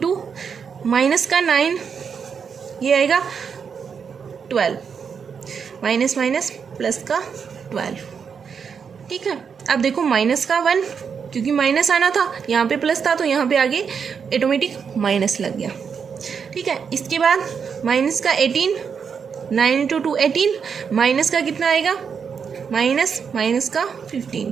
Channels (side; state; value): left; quieter; 6.5 dB